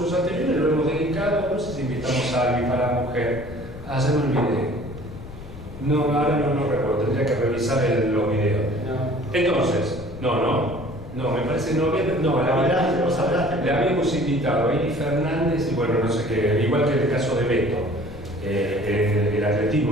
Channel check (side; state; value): left; noise; rumble, 14 dB below the sound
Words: anteriores lo hemos dedicado, no sé si invitamos a alguien para la mujer, se me olvidé. No, ahora no recuerdo, tendría que revisar los videos. No. Entonces, no, me parece le habíamos invitado a Eli Fernández y bueno, no sé qué, igual que el caso de Beto. El